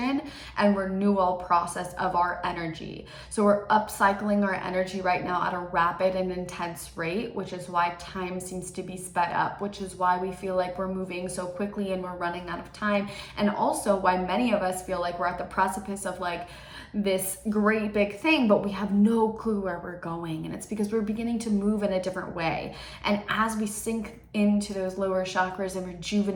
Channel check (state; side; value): identical; both; correlation 1.00